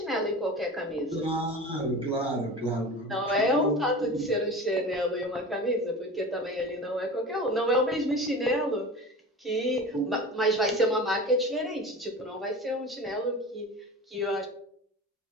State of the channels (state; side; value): normal; both; correlation 0.33